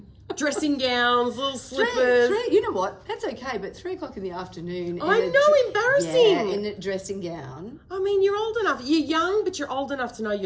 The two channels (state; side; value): identical; both; correlation 1.00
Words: Dressing gowns, little slippers. 3, you know what? That's okay, but 3:00 in the afternoon. I in a know, embarrassing. Yeah, in a dressing gown. I mean, you're old enough. You're young, but you're old enough to know